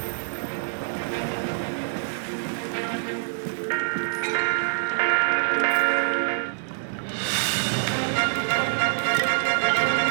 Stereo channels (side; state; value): left; silent; digital silence